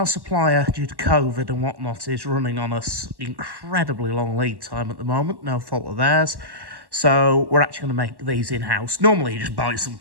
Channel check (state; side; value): late; left; 1.1 ms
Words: supplier, due to COVID and whatnot, is running on us incredibly long lead time at the moment. No fault of theirs. So we're actually going to make these in-house. Normally, you just buy